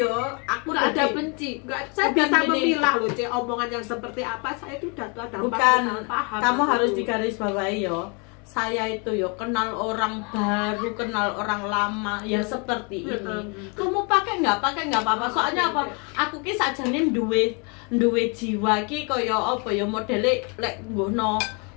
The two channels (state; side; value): quieter; right; 33.9 dB